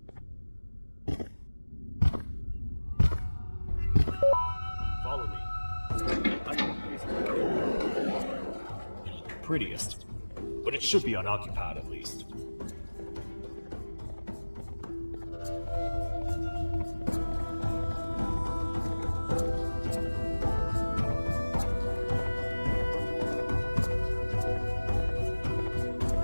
Follow me. I know what place to go. It ain't the prettiest, but it should be unoccupied at least.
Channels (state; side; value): inverted; both; correlation -1.00